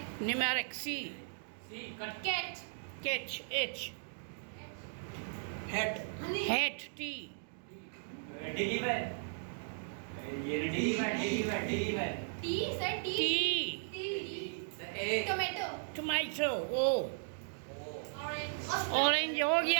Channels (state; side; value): silent; left; digital silence